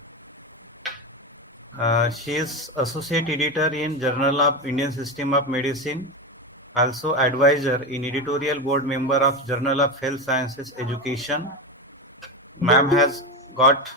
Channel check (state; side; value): normal; both; correlation 0.17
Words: She is associate editor in Journal of Indian System of Medicine, also advisor in editorial board member of Journal of Health Sciences Education. Ma'am has got